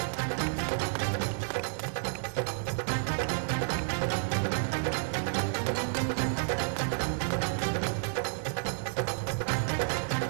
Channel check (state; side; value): silent; left; 57 dB below the other